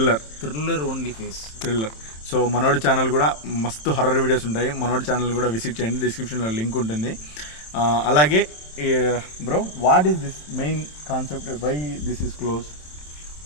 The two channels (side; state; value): right; late; 27 ms